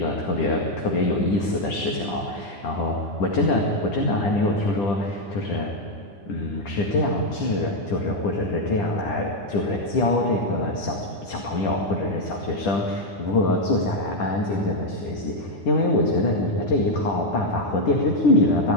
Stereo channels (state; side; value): late; right; 10 ms